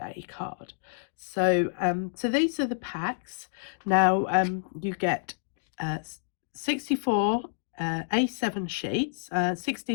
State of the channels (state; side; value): silent; right; digital silence